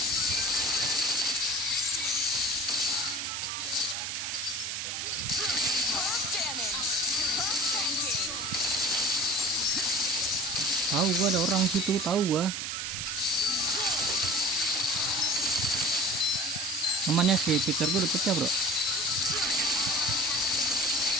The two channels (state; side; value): noise; right; hiss, 3 dB below the sound